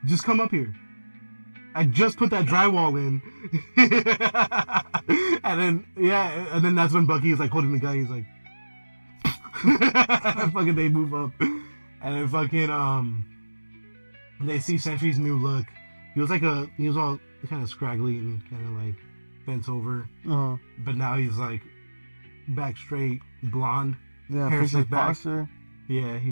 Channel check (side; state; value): both; inverted; correlation -1.00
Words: just come up here. I just put that drywall in. and then that's when Bucky is like holding the gun. He's like, fucking they move up, and then fucking they see Sentry's new look. He was all kind of scraggly and kind of like bent over, but now he's like back straight, blonde. Yeah, hair fix his slicked back. posture. Yeah,